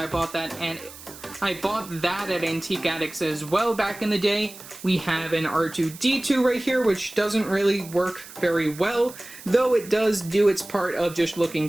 bought that at Antique Addicts as well back in the day. We have an R2-D2 right here, which doesn't really work very well, though it does do its part of just looking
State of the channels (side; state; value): right; noise; hiss, 17 dB below the sound